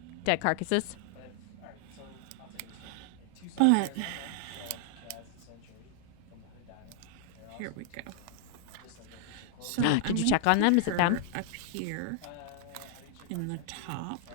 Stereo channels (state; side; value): different; both; correlation 0.00